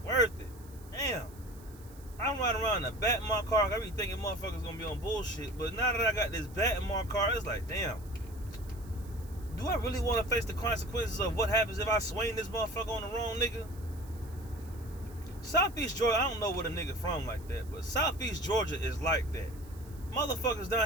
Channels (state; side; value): noise; right; hiss, 23 dB below the sound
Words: worth it. Damn. I'm riding around in a bat in my car. I be thinking motherfuckers gonna be on bullshit. But now that I got this bat in my car, it's like, damn. Do I really want to face the consequences of what happens if I swing this motherfucker on the wrong nigga? Southeast Georgia, I don't know where the nigga from like that, but Southeast Georgia is like that. Motherfuckers